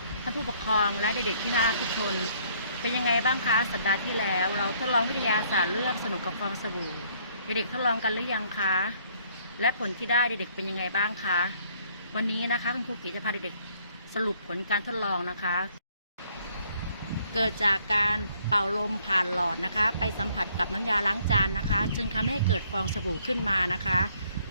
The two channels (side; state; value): both; inverted; correlation -0.64